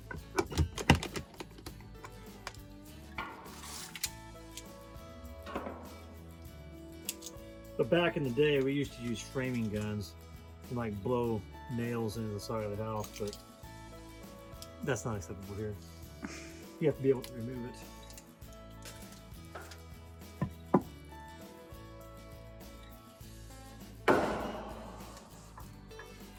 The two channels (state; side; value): identical; both; correlation 1.00